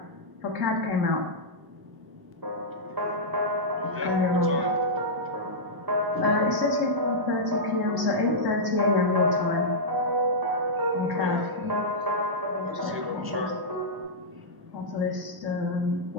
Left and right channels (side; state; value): left; late; 1.1 ms